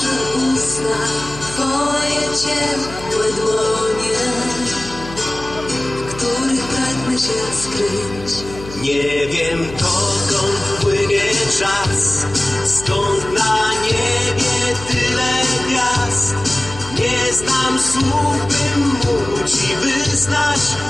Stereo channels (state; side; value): noise; left; hum, 14 dB below the sound